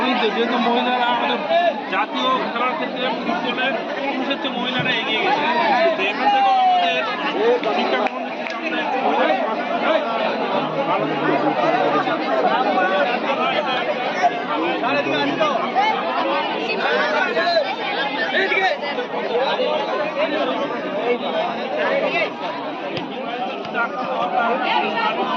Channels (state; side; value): identical; both; correlation 1.00